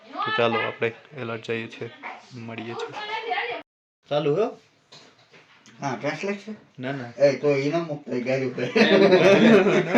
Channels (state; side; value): identical; both; correlation 1.00